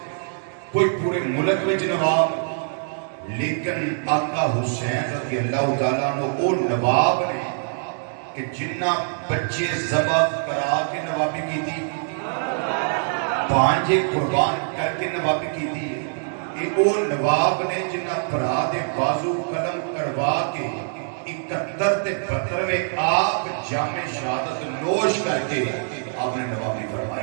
کوئی پورے ملک وچ نواب، لیکن آقا حسین رضی اللہ تعالیٰ عنہ وہ نواب نے کہ جنہ بچے ذبح کرا کے نوابی کی تھی، پانچے قربان کر کے نوابی کی تھی، کہ وہ نواب نے جنہ پرا دے بازو قلم کروا کے 71 تے 72 میں آپ جام شہادت نوش کر کے آپ نے نوابی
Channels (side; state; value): left; silent; digital silence